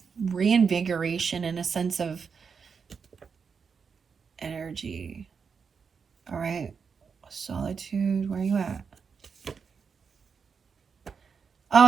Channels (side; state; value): left; quieter; 5.9 dB